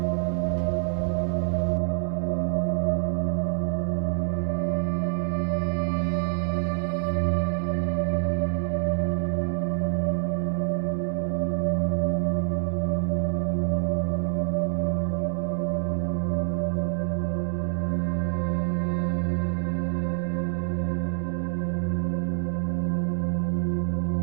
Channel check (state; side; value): silent; left; digital silence